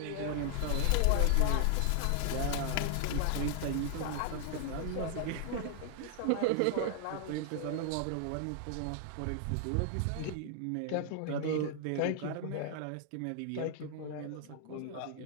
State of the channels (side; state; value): both; different; correlation 0.00